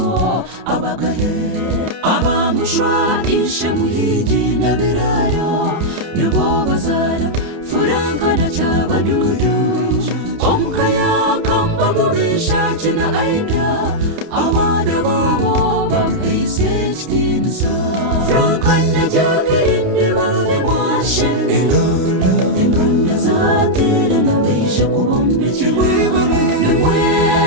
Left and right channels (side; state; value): left; late; 30 ms